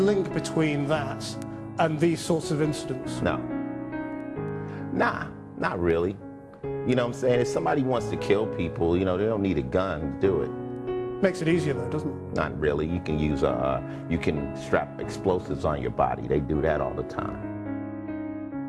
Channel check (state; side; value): identical; both; correlation 1.00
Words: between that and these sorts of incidents? No. Nah, not really. You know what I'm saying? If somebody wants to kill people, you know, they don't need a gun to do it. Makes it easier though, doesn't it? Not really. You can use you can strap explosives on your body. They do that all the time.